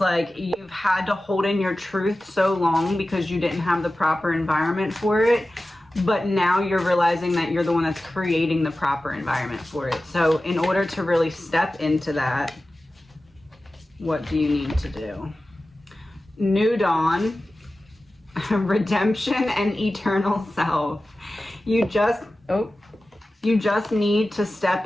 you've had to hold in your truth so long because you didn't have the proper environment for it. But now you're realizing that you're the one that's creating the proper environment for it. So in order to really step into that, what do you need to do? New dawn, redemption, and eternal self. You just need to step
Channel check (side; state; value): both; normal; correlation 0.95